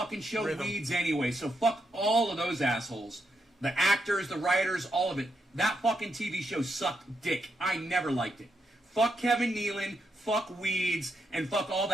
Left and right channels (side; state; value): both; normal; correlation 0.81